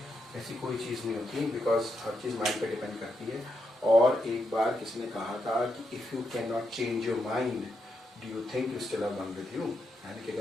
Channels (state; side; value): normal; both; correlation 0.82